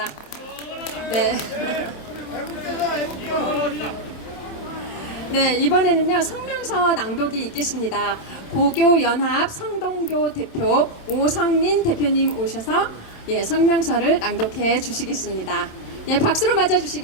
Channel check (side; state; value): right; late; 26 ms